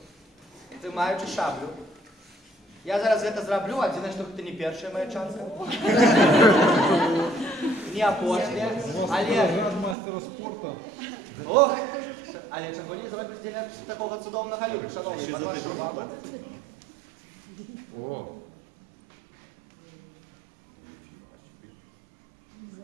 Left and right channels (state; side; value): drops out; left; at 10.0 s